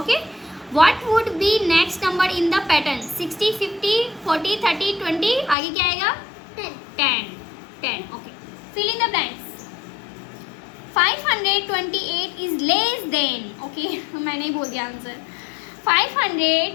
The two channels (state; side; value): drops out; right; at 5.6 s